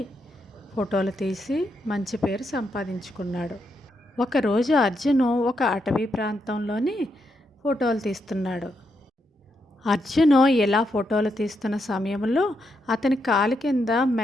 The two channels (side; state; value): both; normal; correlation 0.81